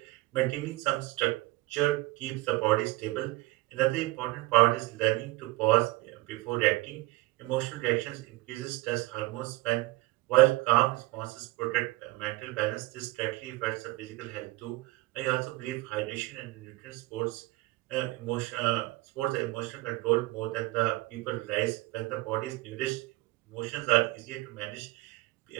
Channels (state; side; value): quieter; left; 20.8 dB